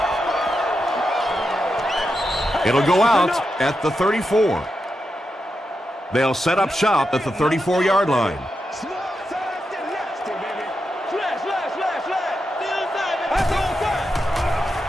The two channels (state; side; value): normal; both; correlation 0.87